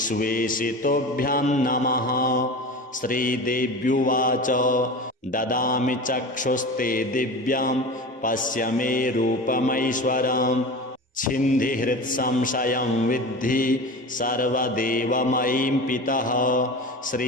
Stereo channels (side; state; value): both; normal; correlation 0.31